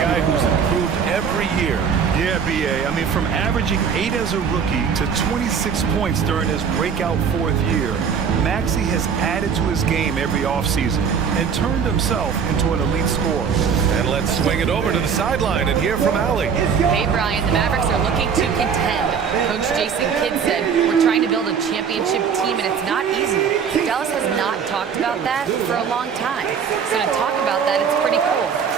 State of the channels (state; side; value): quieter; left; 6.7 dB